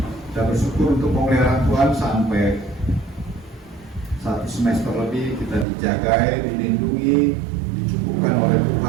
Kita bersyukur untuk pemeliharaan Tuhan sampai 1 semester lebih kita dijagai, dilindungi, dicukupkan oleh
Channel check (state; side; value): drops out; left; at 5.7 s